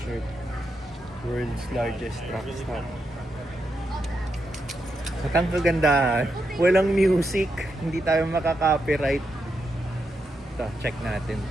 World's largest truck stop. At ang kagandahan, walang music, hindi tayo makaka-copyright. Ito, check natin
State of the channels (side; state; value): both; normal; correlation 0.84